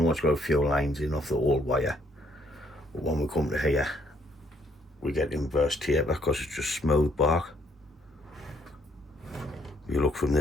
it's got a few lines in off the old wire, but when we come to here, we get inverse taper because it's just smooth bark. If you look from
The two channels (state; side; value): normal; both; correlation 0.67